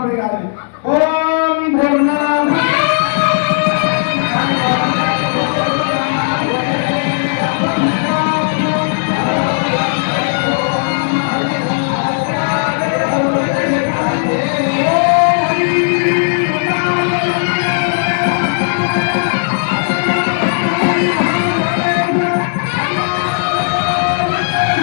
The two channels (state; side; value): silent; right; 70 dB below the other